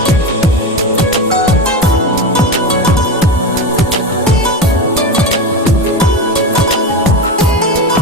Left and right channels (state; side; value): normal; both; correlation 0.21